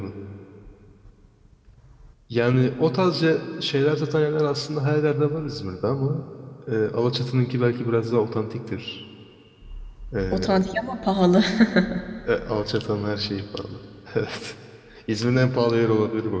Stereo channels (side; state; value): both; identical; correlation 1.00